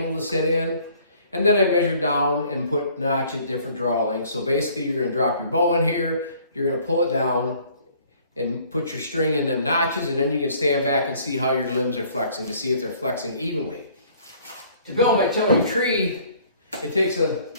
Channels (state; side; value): inverted; both; correlation -0.57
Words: to sit in, and then I measure down and put notch at different draw lengths. So basically you're going to drop your bow in here, you're going to pull it down, and put your string in them notches, and then you can stand back and see how your limbs are flexing to see if they're flexing evenly. To build my tillering tree, it takes a